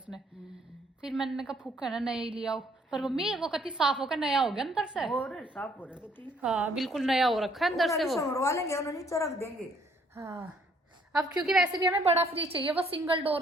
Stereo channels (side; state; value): both; normal; correlation 0.64